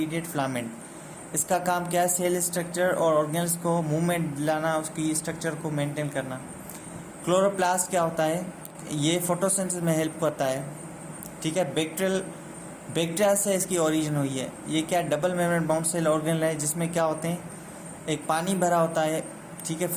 फिलामेंट। इसका काम क्या है, सेल स्ट्रक्चर और ऑर्गेन्स को मूवमेंट दिलाना, उसकी स्ट्रक्चर को मेंटेन करना। क्लोरोप्लास्ट क्या होता है, ये फोटोसिंथेसिस में हेल्प करता है, ठीक है। बैक्टीरिया से इसकी ओरिजिन हुई है। ये क्या, double membrane bound cell organelle है, जिसमें क्या होते हैं, एक पानी भरा होता है, ठीक है,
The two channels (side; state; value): both; identical; correlation 1.00